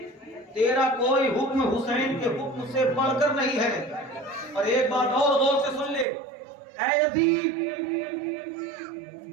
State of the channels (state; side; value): drops out; left; at 6.1 s